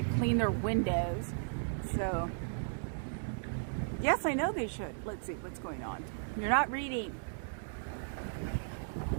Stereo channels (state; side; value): silent; left; digital silence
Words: clean their windows. So, yes, I know they should. Let's see what's going on. You're not reading.